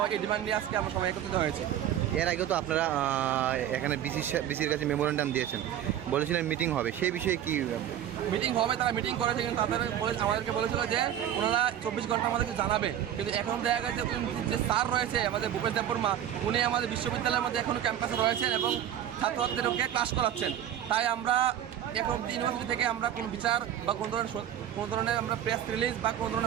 হয়, এই ডিমান্ড নিয়ে আজকে আমরা সবাই একত্রিত হয়েছে। এর আগেও তো আপনারা এখানে বিসির কাছে মেমোরেন্ডাম দিয়েছেন, বলেছিলেন মিটিং হবে, সেই বিষয়ে কি মিটিং হবে? তারা মিটিং করেছে কিন্তু আমাদেরকে বলেছিল যে ওনারা 24 ঘন্টা আমাদেরকে জানাবে। কিন্তু এখন দেখা গেছে যে স্যার রয়েছে আমাদের ভূপেশ দেববর্মা উনি আমাদের বিশ্ববিদ্যালয়ের মধ্যে এখনও ক্যাম্পাসে রয়েছেন এবং ছাত্রছাত্রীদেরকে ক্লাস করাচ্ছেন। তাই আমরা এখন ইউনিভার্সিটি থেকে আমরা কোনো বিচার বা কোনো ধরনের আমরা প্রেস রিলিজ বা কোনো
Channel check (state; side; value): quieter; left; 10.8 dB